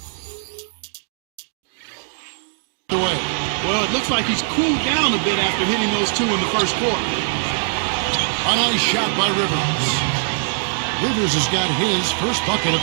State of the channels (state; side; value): silent; left; digital silence